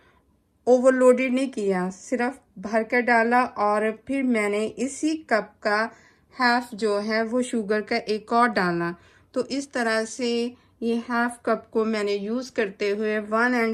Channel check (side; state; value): both; identical; correlation 1.00